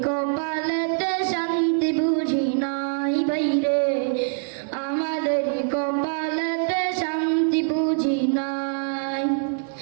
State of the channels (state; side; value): silent; left; digital silence